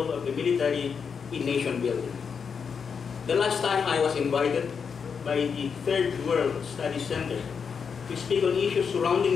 of the military in nation building. The last time I was invited by the Third World Studies Center to speak on issues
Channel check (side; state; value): right; quieter; 6.2 dB